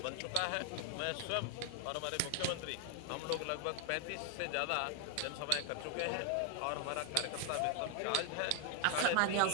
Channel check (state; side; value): different; both; correlation 0.00